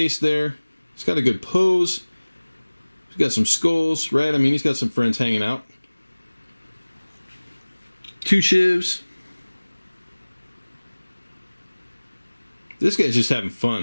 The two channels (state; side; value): inverted; both; correlation -1.00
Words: there. He's got a good pose. He's got some skulls, right? I mean, he's got some friends hanging out. 2 Shivs. This guy's just having